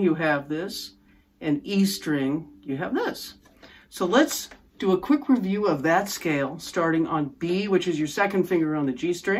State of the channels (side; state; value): both; identical; correlation 1.00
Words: you have this, and E string, you have this. So let's do a quick review of that scale, starting on B, which is your second finger on the G